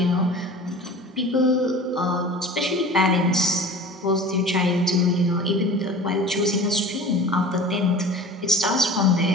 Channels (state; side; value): normal; both; correlation 0.39